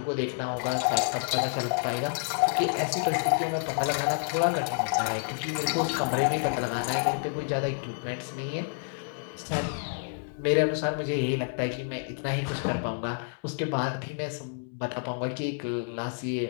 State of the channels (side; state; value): right; silent; digital silence